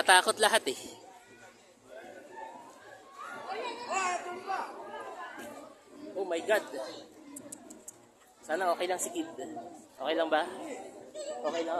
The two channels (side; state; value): both; identical; correlation 1.00